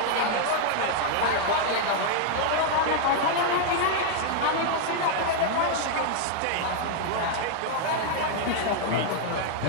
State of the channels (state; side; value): different; both; correlation 0.00